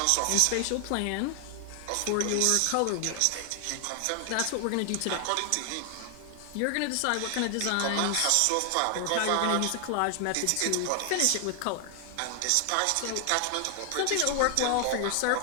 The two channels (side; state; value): both; different; correlation 0.00